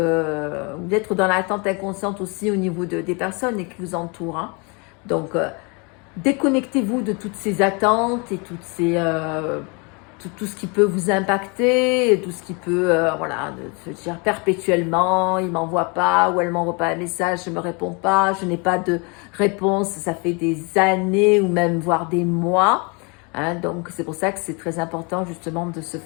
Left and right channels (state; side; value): quieter; right; 31.7 dB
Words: dans l'attente inconsciente aussi au niveau des personnes qui vous entourent, hein. Donc, déconnectez-vous de toutes ces attentes et toutes ces tout ce qui peut vous impacter, tout ce qui peut, voilà, de se dire perpétuellement, il ne m'envoie pas ou elle ne m'envoie pas un message, je ne me réponds pas, je n'ai pas de réponse, ça fait des années ou même voire des mois, hein. Donc c'est pour ça que c'est très important justement de se